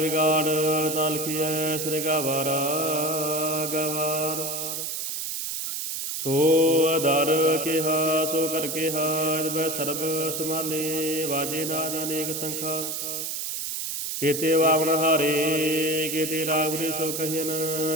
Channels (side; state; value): right; noise; hiss, 3 dB below the sound